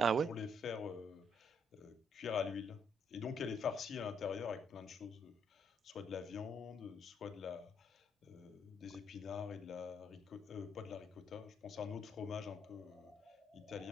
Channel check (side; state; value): both; normal; correlation 0.72